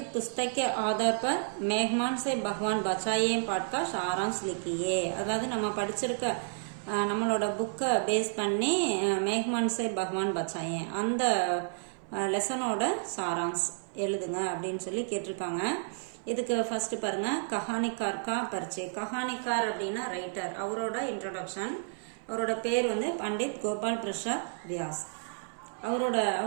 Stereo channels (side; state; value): left; silent; 57 dB below the other